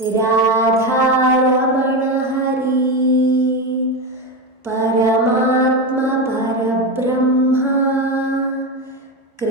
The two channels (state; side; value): normal; both; correlation 0.16